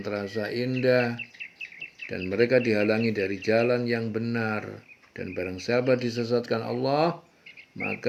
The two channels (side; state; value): both; identical; correlation 1.00